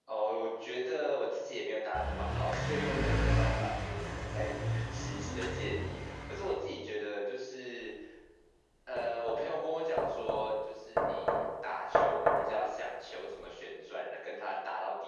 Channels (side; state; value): both; identical; correlation 1.00